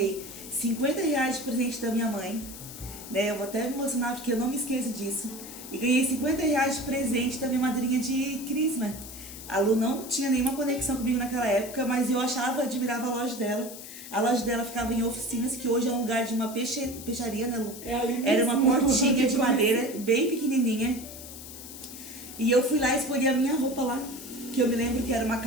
R$50 de presente da minha mãe, né? Eu vou até me emocionar porque eu não me esqueço disso. E ganhei R$50 de presente da minha madrinha de crisma. A Lu não tinha nenhuma conexão comigo naquela época, mas eu admirava a loja dela. A loja dela ficava em oficinas, que hoje é um lugar de uma peixaria, né, Lu? Era uma portinha de madeira, bem pequenininha. E eu fui lá e escolhi a minha roupa lá, que eu me lembro que era uma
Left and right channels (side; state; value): left; noise; hiss, 13 dB below the sound